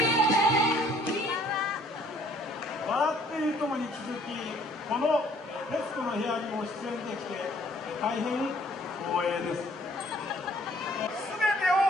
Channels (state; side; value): normal; both; correlation 0.60